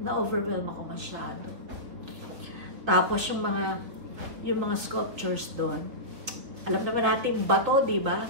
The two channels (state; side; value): late; left; 3.5 ms